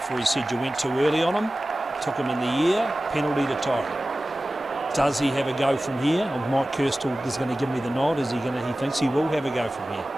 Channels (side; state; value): both; normal; correlation 0.96